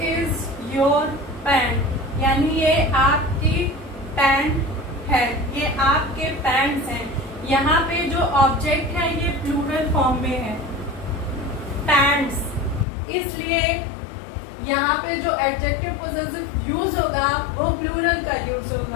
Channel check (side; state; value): right; drops out; at 12.9 s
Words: is your pant यानी ये आपकी पैंट है, ये आपके पैंट्स हैं। यहाँ पे जो ऑब्जेक्ट है ये प्लूरल फॉर्म में है, पैंट्स, इसलिए यहाँ पे जो एडजेक्टिव पोजेसिव यूज होगा वो प्लूरल का यूज